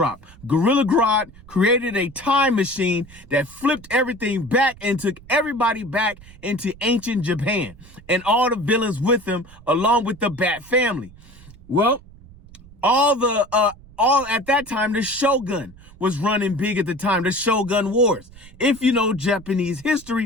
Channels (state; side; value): noise; right; rumble, 21 dB below the sound